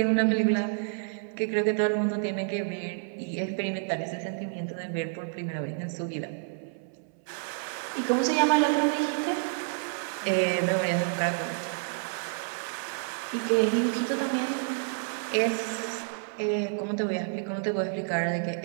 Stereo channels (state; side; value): silent; left; 59 dB below the other